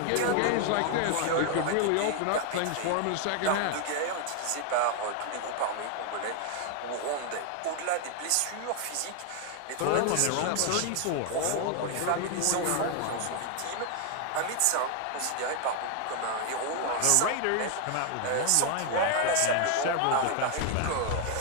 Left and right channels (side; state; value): both; different; correlation 0.00